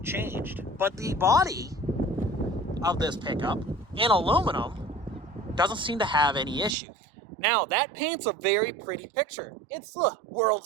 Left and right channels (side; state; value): left; drops out; at 6.8 s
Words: changed, but the body of this pickup in aluminum doesn't seem to have any issue. Now, that paints a very pretty picture. It's the